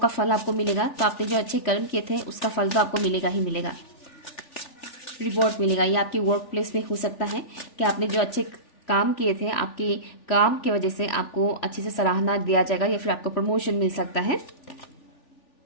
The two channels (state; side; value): late; right; 3.4 ms